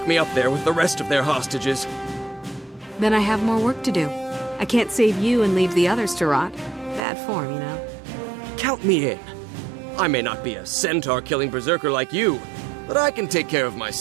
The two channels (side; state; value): left; drops out; at 7.0 s